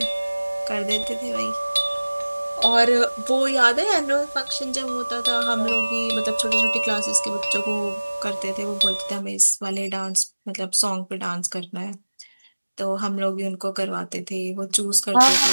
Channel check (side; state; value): both; inverted; correlation -1.00